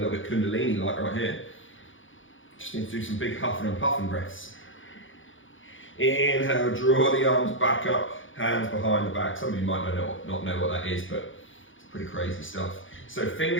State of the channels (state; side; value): late; right; 0.57 ms